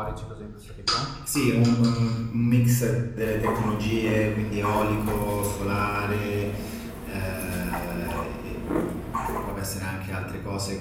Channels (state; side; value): identical; both; correlation 1.00